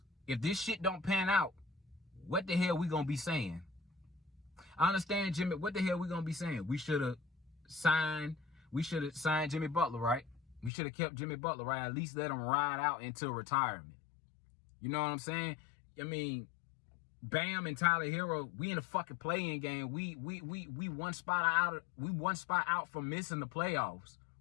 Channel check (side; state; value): right; drops out; at 10.7 s